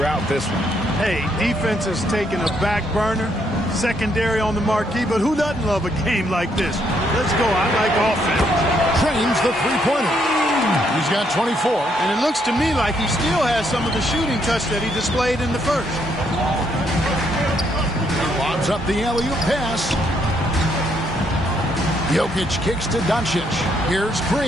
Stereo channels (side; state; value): both; normal; correlation 0.73